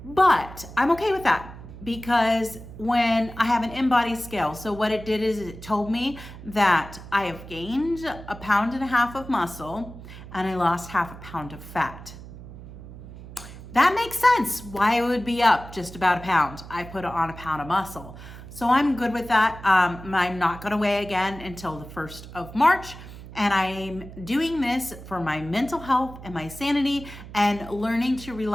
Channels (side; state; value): right; noise; hum, 15 dB below the sound